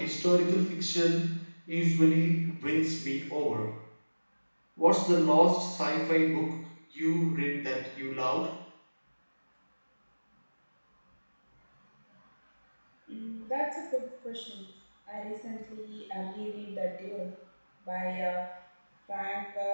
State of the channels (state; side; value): inverted; both; correlation -1.00